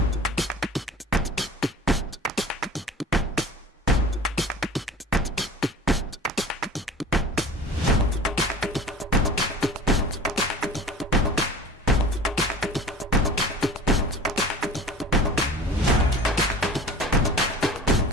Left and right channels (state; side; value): normal; both; correlation 0.40